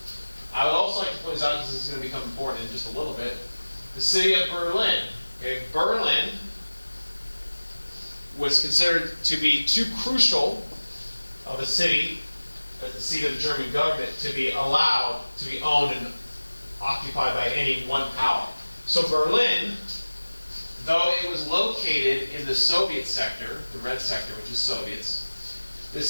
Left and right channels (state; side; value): inverted; both; correlation -1.00